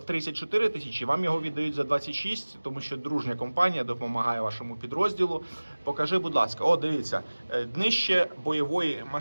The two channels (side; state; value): both; inverted; correlation -1.00